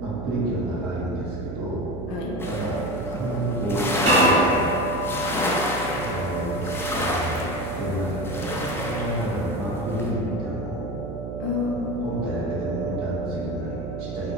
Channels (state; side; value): noise; right; hum, 7 dB below the sound